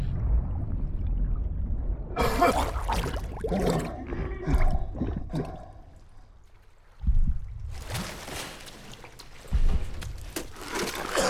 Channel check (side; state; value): both; identical; correlation 1.00